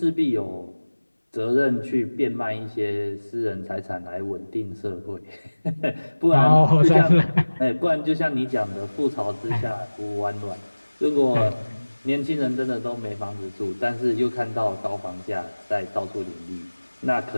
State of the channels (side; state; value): both; inverted; correlation -1.00